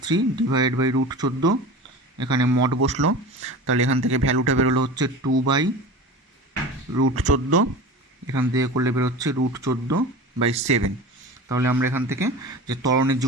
ডিভাইডেড বাই √14, এখানে মড বসলো, তাহলে এখান থেকে ভ্যালুটা বেরোলো হচ্ছে 2/√14, এখান থেকে করলে বেরোচ্ছে √14/7। তাহলে আমরা এখান থেকে যে ত্বরণের যে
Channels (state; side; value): normal; both; correlation 0.33